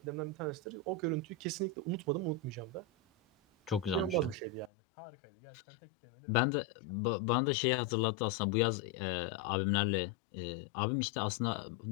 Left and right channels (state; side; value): drops out; right; at 4.7 s